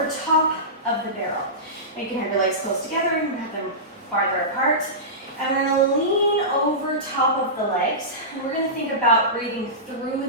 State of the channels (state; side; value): normal; both; correlation -0.19